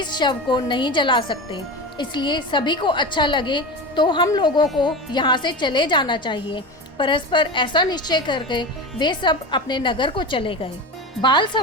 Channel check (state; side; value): normal; both; correlation 0.26